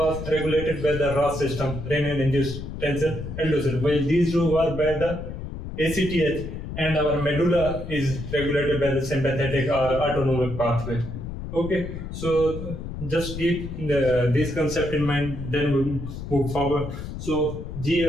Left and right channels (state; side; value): noise; left; rumble, 8 dB below the sound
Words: regulated by the RAS system, renin-induced tension, aldosterone, while these two were by the ACTH, and our medulla is regulated by the sympathetic or autonomic pathway. Okay, so just keep this concept in mind, then we move forward. So